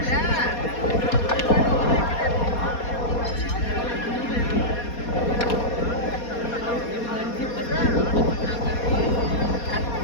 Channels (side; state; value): right; late; 4.2 ms